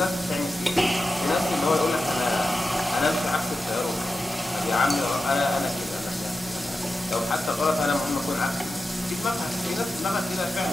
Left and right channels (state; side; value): normal; both; correlation 0.92